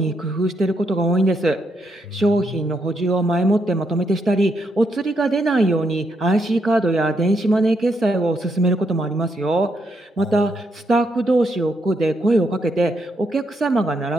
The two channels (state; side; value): normal; both; correlation 0.78